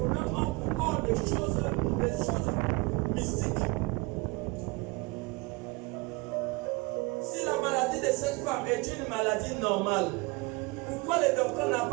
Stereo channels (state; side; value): quieter; left; 25.9 dB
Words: ont encore des choses mystiques. Si la maladie de cette femme est une maladie normale, pourquoi le docteur n'a